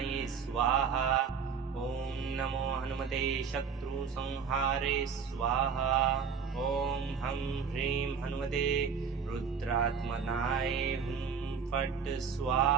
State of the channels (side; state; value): left; quieter; 6.2 dB